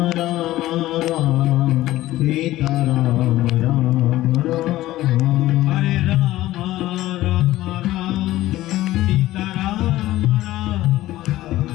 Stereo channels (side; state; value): right; quieter; 15.7 dB